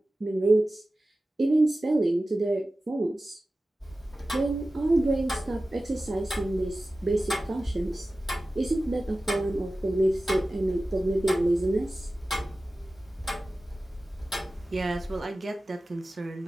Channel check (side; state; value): both; normal; correlation 0.95